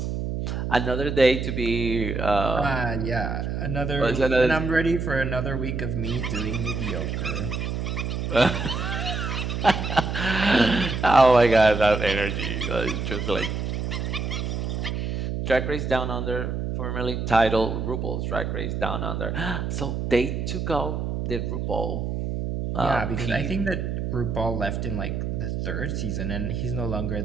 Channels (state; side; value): noise; right; hum, 2 dB below the sound